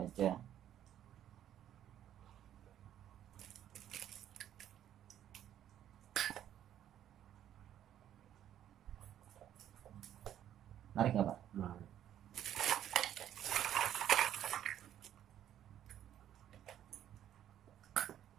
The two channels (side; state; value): left; quieter; 11.0 dB